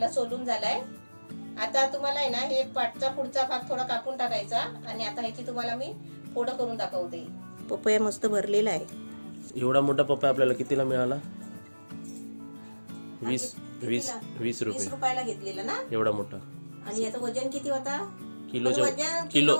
सोलून झालाय. आता तुम्हाला आहे ना हे पाटचा पुढचा भाग थोडा कापून टाकायचा आणि आता ह्याची तुम्हाला मी फोडं करून दाखवते. पपया मस्त भरलेला आहे. एवढा मोठा पपया आपल्याला कितीला मिळाला? 20 रुपयाला घेतलेला ना एवढा मोठा. आणि याचं वजन किती होता? किलो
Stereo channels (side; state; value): both; inverted; correlation -1.00